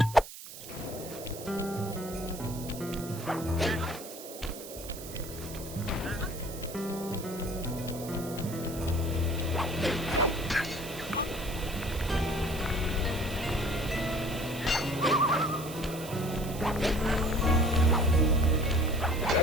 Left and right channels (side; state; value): right; noise; hiss, 13 dB below the sound